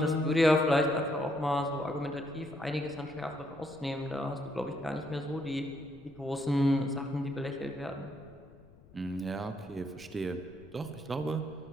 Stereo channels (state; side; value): noise; left; rumble, 24 dB below the sound